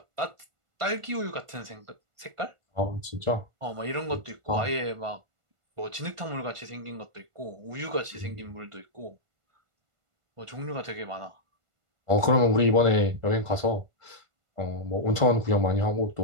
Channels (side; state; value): left; late; 1.5 ms